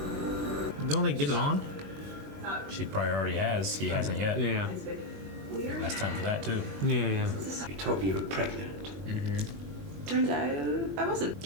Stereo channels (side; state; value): left; late; 21 ms